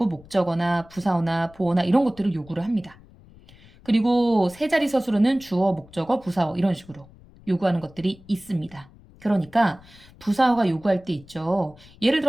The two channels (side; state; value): left; noise; rumble, 24 dB below the sound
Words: 목적어나 부사어나 보어나 이런 것들을 요구를 합니다. 그리고 세 자리 서술어는 주어, 목적어, 부사어 이런 식으로 요구하는 것들이 있습니다. 그러니까 부사어가 요구할 때 있죠. 예를